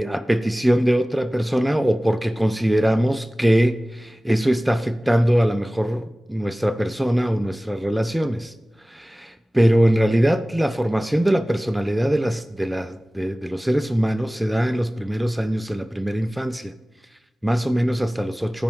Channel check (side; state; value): both; normal; correlation 0.98